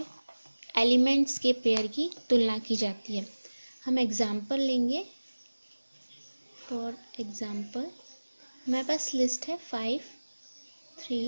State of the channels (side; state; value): both; inverted; correlation -1.00